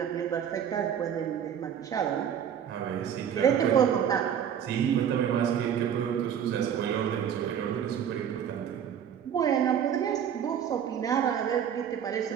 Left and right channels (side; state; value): left; quieter; 8.8 dB